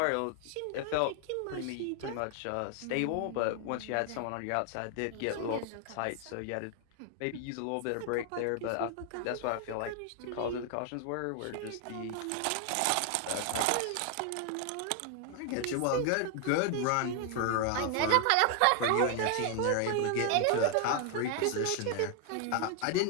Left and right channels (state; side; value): different; both; correlation 0.00